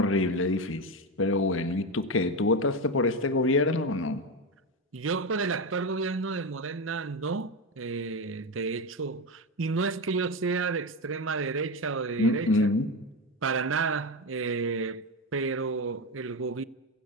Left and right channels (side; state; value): both; normal; correlation 0.15